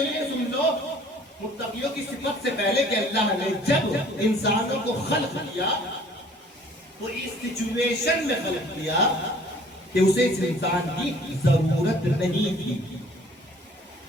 یہ سن لو متقیوں کی صفت سے پہلے کہ اللہ نے جب انسانوں کو خلق کیا تو اس سچویشن میں خلق کیا کہ اسے اس انسان کی ضرورت نہیں تھی،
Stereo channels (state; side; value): normal; both; correlation 0.54